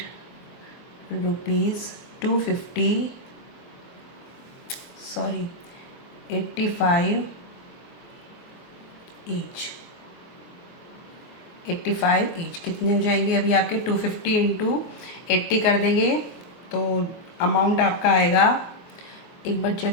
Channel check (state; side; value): late; right; 23 ms